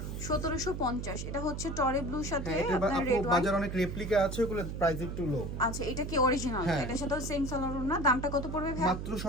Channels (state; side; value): noise; right; hum, 5 dB below the sound